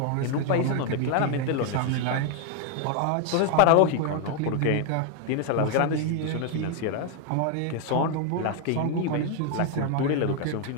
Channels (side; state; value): both; different; correlation 0.00